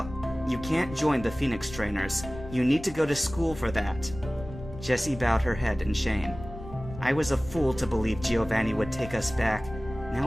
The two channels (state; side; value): noise; left; rumble, 14 dB below the sound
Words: "You can't join the Phoenix trainers. You need to go to school for that." Jessie bowed her head in shame. "I was a fool to believe Giovanni would take us back.